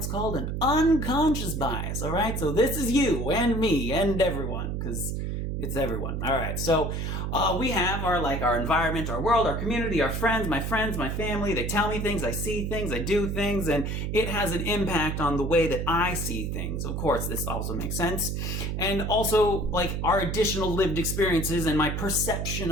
called an unconscious bias, all right? So this is you and me and everyone, because it's everyone. All right, so we have our environment, our world, our community, our friends, my family. They tell me things, I see things, I do things, and it has an impact on the way that I see things. Of course, this also makes sense. And also like our additional lived experiences and my perception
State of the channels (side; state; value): right; noise; hum, 2 dB below the sound